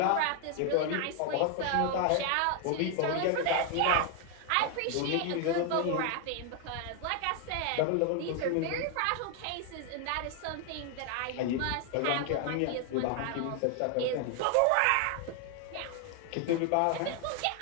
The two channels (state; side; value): different; both; correlation 0.01